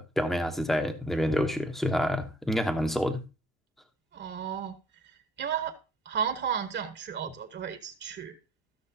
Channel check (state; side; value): normal; both; correlation 0.59